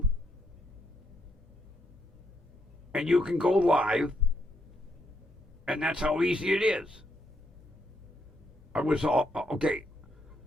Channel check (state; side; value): normal; both; correlation 0.76